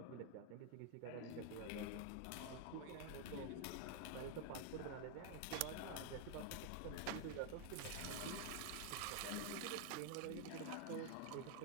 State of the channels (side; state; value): both; different; correlation 0.00